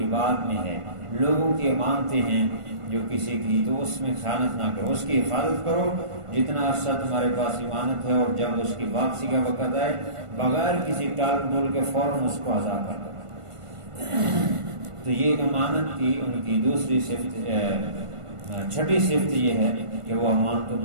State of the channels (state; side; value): late; left; 1.5 ms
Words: میں ہے، لوگوں کی امانتیں ہیں جو کسی کی، تو اس میں خیانت نہ کرو، اس کی حفاظت کرو جتنا عرصہ تمہارے پاس امانت ہے، اور جب اس کی واپسی کا وقت آئے بغیر کسی ٹال ٹول کے فوراً اس کو ادا کر دو۔ تو یہ امانت کی ان کی دوسری صفت، چھٹی صفت یہ ہے کہ وہ امانتوں